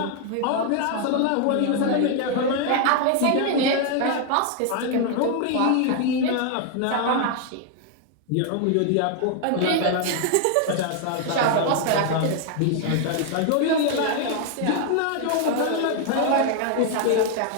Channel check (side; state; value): both; different; correlation 0.00